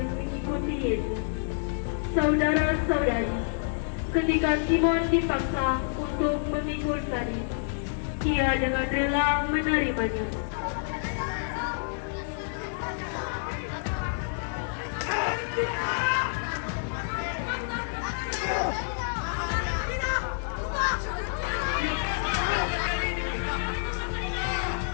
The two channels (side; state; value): right; silent; digital silence